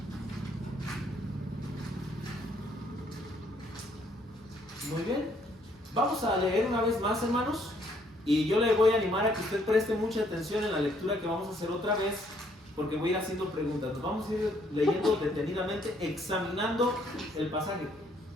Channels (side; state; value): both; normal; correlation 0.67